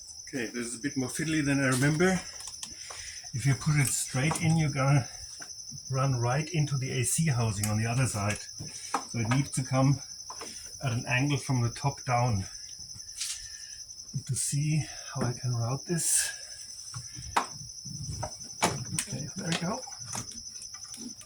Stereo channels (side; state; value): both; identical; correlation 1.00